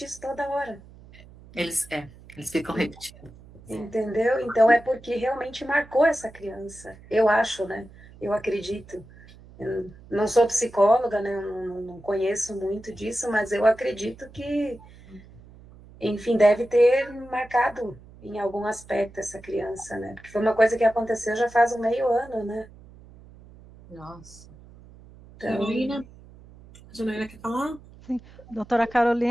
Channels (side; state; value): right; noise; hum, 22 dB below the sound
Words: isso toda hora. Eles ficam repetindo. Entendeu? Então é porque realmente marcou essa criança. Eu acho, né? Eu acredito. Eu não sou psicóloga, né? Eu não conheço muito disso, mas eu acredito que, enfim, deve ter marcado em algum aspecto essa criança, né? Porque foi uma coisa que aconteceu já faz um meio ano, né? Nossa. Então, Carolina? A Janaína quer falar? Doutora